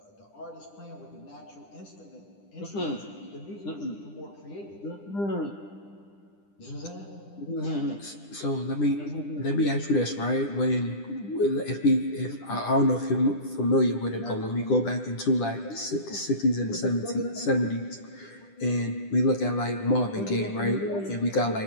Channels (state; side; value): late; right; 10 ms